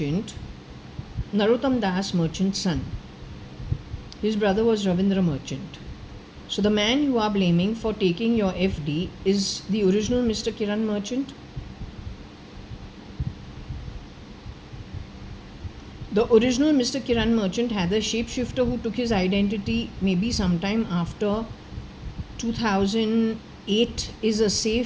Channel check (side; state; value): both; identical; correlation 1.00